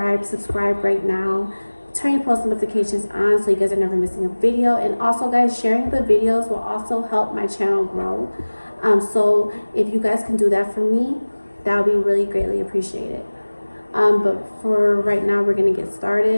right now. Turn your post notifications on so you guys are never missing a video. And also, guys, sharing the videos will also help my channel grow. So if you guys can do that for me, that would be really greatly appreciated. But for right now, we're gonna get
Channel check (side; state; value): both; inverted; correlation -1.00